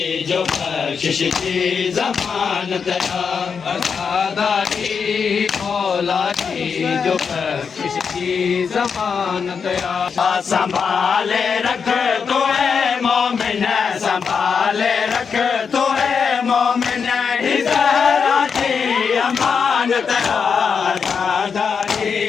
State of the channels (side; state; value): right; quieter; 6.1 dB